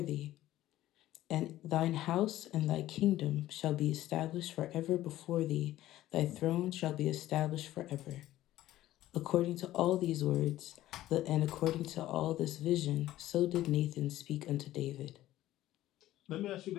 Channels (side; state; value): right; quieter; 14.6 dB